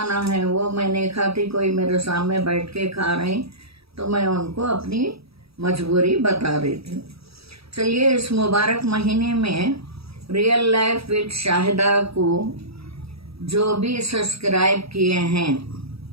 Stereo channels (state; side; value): late; left; 0.77 ms